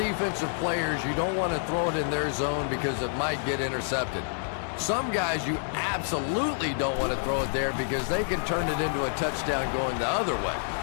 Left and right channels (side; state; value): right; silent; 59 dB below the other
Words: players, you don't want to throw it in their zone because it might get intercepted. Some guys, you absolutely don't want to throw it there because they can turn it into a touchdown going the other way.